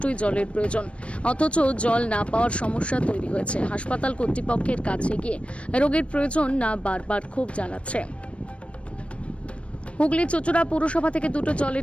জলের প্রয়োজন। অথচ জল না পাওয়ার সমস্যা তৈরি হয়েছে। হাসপাতাল কর্তৃপক্ষের কাছে গিয়ে রোগীর প্রয়োজন না বারবার খুব জানাচ্ছে। হুগলি চুঁচুড়া পৌরসভা থেকে দুটো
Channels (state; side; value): late; right; 0.061 ms